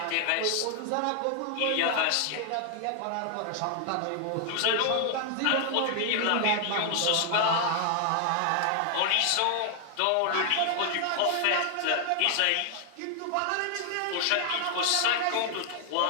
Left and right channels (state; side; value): different; both; correlation 0.00